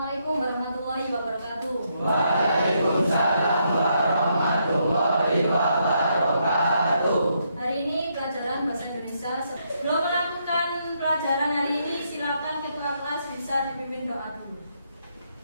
warahmatullahi wabarakatuh. Waalaikumsalam warahmatullahi wabarakatuh. Hari ini pelajaran bahasa Indonesia. Sebelum melakukan pelajaran hari ini, silakan ketua kelas bisa dipimpin doa dulu.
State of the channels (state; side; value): inverted; both; correlation -0.76